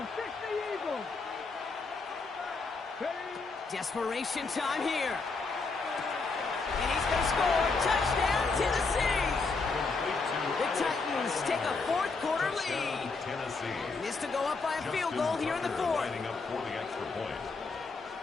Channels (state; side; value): quieter; right; 4.1 dB